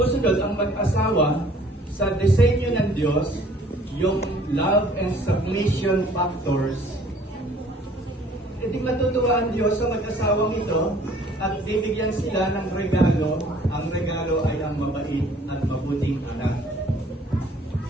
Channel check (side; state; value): both; normal; correlation 0.56